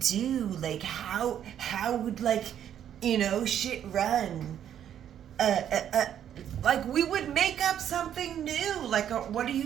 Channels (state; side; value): quieter; left; 9.9 dB